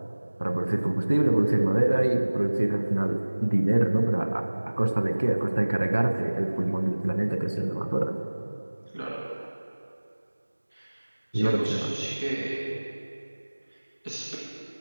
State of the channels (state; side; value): inverted; both; correlation -1.00